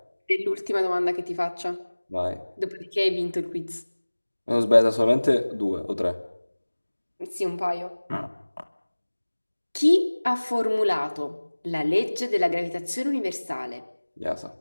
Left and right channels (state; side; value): inverted; both; correlation -1.00